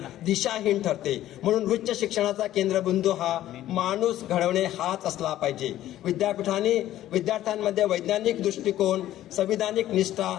दिशाहीन ठरते. म्हणून उच्च शिक्षणाचा केंद्रबिंदू हा माणूस घडवणे हाच असला पाहिजे. विद्यार्थ्यांमध्ये वैज्ञानिक दृष्टिकोन, संविधानिक निष्ठा,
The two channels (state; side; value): quieter; right; 13.4 dB